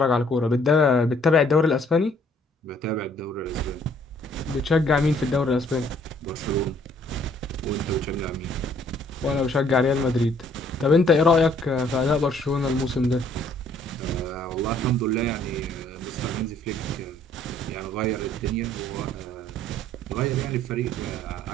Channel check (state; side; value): normal; both; correlation 0.62